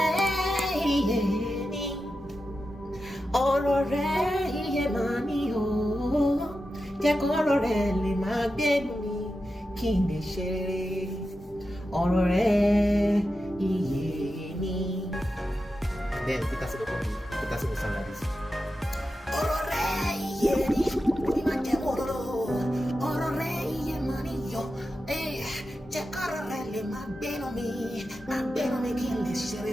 Ọ̀rọ̀ rẹ̀ iye máa ní o, jẹ́ kọ́rọ̀ rẹ̀ lè máa gbénu mi kí n lè ṣe rere. Ọ̀rọ̀ rẹ̀ iye ni. Then Peter will sound like this. Ọ̀rọ̀ rẹ̀ iye ni, mi máa jẹ́ òróró. Ọ̀rọ̀ rẹ̀ iye máa ní yọ, jẹ́ kọ́rọ̀ rẹ̀ lè máa gbénu mi kí n lè ṣe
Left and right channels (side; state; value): both; normal; correlation 0.91